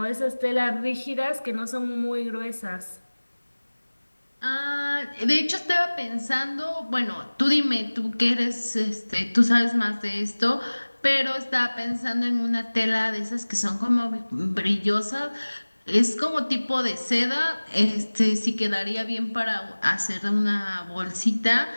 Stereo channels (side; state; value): both; inverted; correlation -1.00